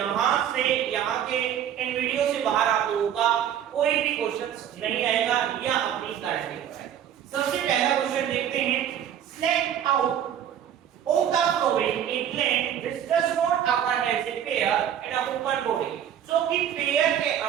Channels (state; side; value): quieter; left; 9.8 dB